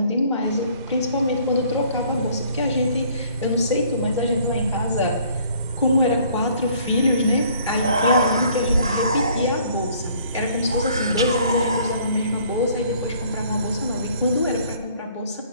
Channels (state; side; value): inverted; both; correlation -0.59